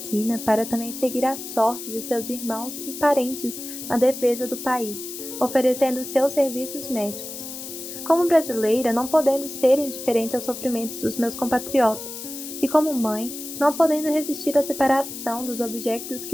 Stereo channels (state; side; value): noise; left; hiss, 10 dB below the sound